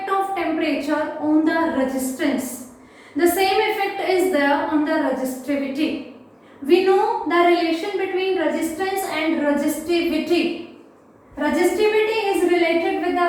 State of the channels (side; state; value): both; identical; correlation 1.00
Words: of temperature on the resistance. The same effect is there on the resistivity. We know the relation between resistance and resistivity. Resistivity is related with